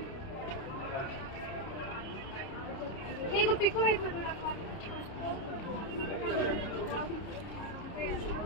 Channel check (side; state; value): right; late; 30 ms